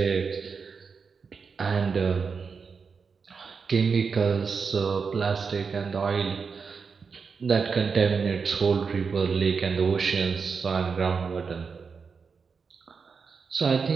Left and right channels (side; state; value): left; quieter; 5.4 dB